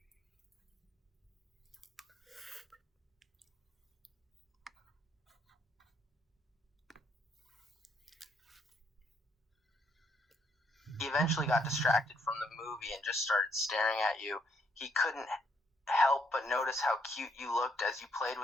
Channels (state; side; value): normal; both; correlation 0.72